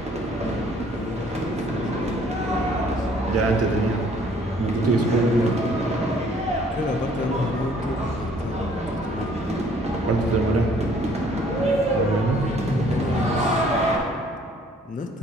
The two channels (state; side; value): normal; both; correlation 0.60